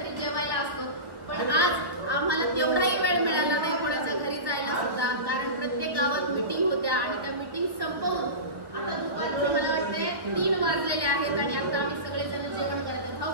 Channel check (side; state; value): left; late; 1.3 ms